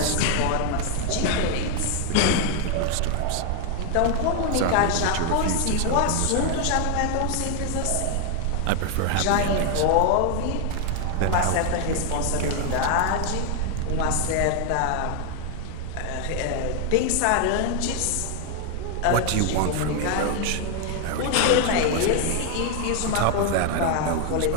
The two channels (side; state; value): both; different; correlation 0.00